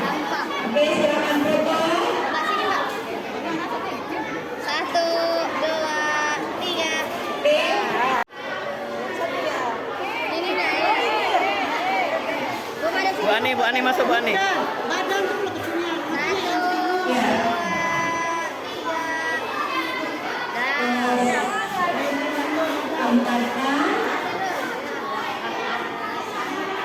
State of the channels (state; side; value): identical; both; correlation 1.00